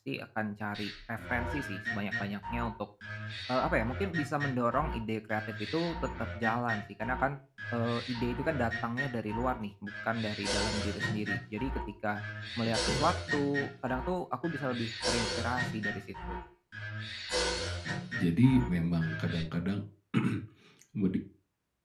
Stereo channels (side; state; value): both; identical; correlation 1.00